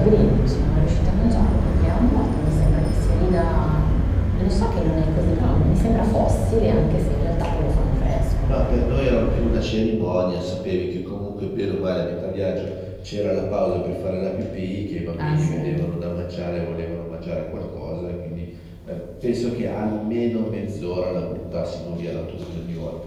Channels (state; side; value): identical; both; correlation 1.00